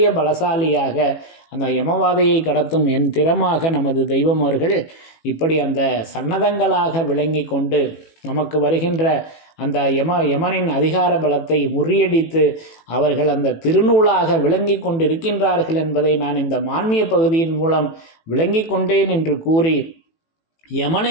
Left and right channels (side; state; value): right; late; 18 ms